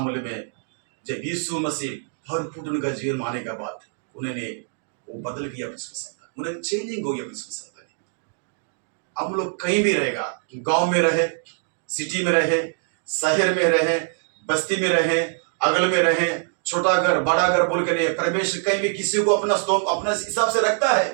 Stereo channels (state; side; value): silent; left; 63 dB below the other